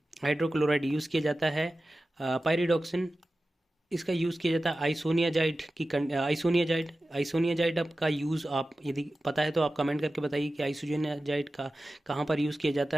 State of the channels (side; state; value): both; normal; correlation 0.94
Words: हाइड्रोक्लोराइड यूज़ किया जाता है। पायरिडॉक्सिन, इसका यूज़ किया जाता है आइसोनियाजाइड का यूज़ आप यदि पता है तो आप कमेंट करके बताइए कि आइसोनियाजाइड का कहाँ पर यूज़ किया